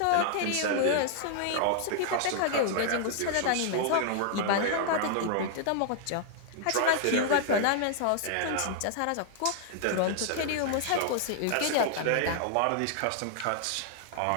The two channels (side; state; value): both; different; correlation 0.00